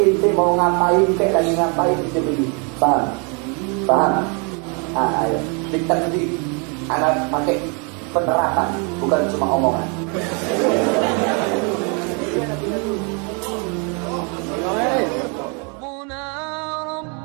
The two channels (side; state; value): left; quieter; 35.1 dB